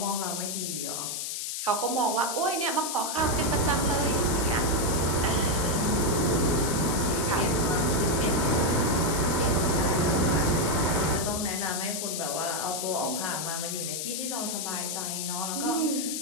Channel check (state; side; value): noise; left; hiss, 3 dB below the sound